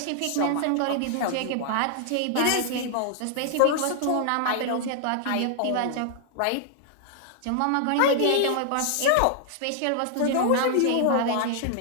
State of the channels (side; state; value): both; different; correlation 0.00